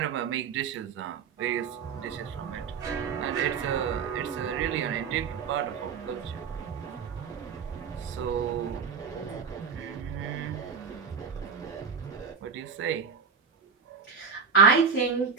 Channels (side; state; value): left; quieter; 6.1 dB